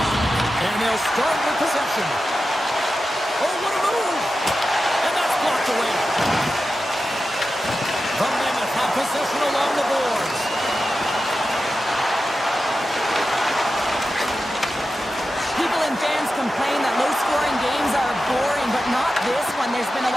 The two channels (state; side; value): normal; both; correlation 0.92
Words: And they'll start with possession. Oh, what a move! And that's blocked away. The Mammoth have possession along the boards. People and fans complain that low-scoring games are boring, but not this one. There's been a